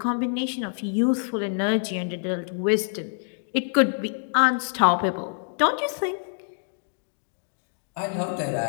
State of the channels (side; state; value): right; silent; digital silence